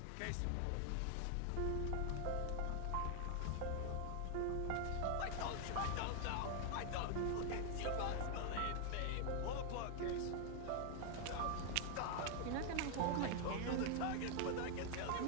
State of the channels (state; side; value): different; both; correlation 0.00